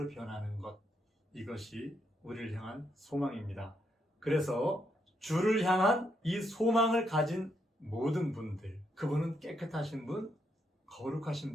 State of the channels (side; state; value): both; normal; correlation 0.77